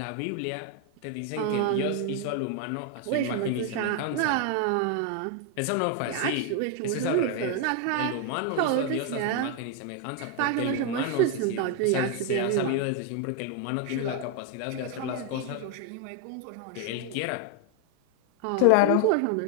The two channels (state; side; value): different; both; correlation 0.01